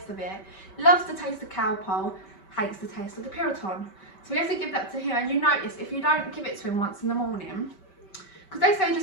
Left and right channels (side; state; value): right; late; 5.2 ms